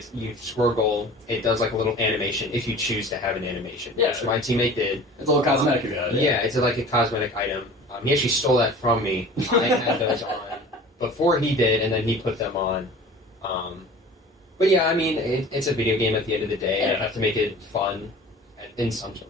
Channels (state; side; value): normal; both; correlation 0.42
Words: you score a goal, it does like a little animation if you choose to have an animation, which my teammate did. It's a little cosmetic. Yeah, it's like a cosmetic item. He actually stole that from me. I had those on before he did, and then he put them on. But yeah, I mean, it's a video game at the end of the day, and I have to make it fun in some